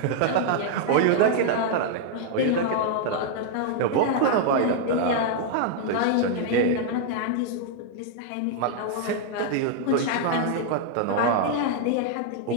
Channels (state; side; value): different; both; correlation -0.01